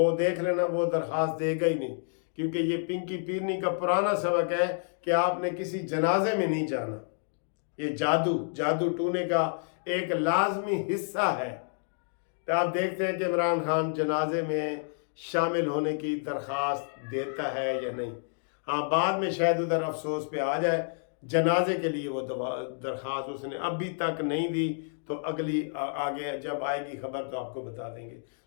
دیکھ لینا وہ درخواست دے گا ہی نہیں، کیونکہ یہ پنکی پیرنی کا پرانا سبق ہے کہ آپ نے کسی جنازے میں نہیں جانا۔ یہ جادو ٹونے کا ایک لازمی حصہ ہے۔ تو آپ دیکھتے ہیں کہ عمران خان جنازے میں شامل ہونے کی درخواست دیتا ہے یا نہیں۔ ہاں بعد میں شاید ادھر افسوس پہ آ جائے، جنازے کے لیے وہ درخواست اس نے ابھی تک نہیں دی، تو اگلی آگے جب آئے گی خبر تو آپ کو بتا دیں گے۔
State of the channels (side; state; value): right; silent; digital silence